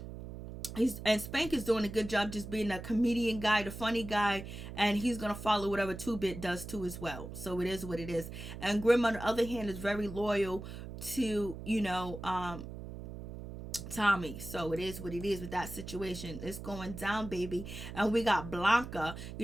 Spank is doing a good job just being a comedian guy, the funny guy, and he's gonna follow whatever 2-Bit does too as well. So it is what it is. And Grim, on the other hand, is very loyal to Tommy. So it is what it is with that situation. It's going down, baby. And we got Blanca.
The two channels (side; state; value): right; noise; hum, 10 dB below the sound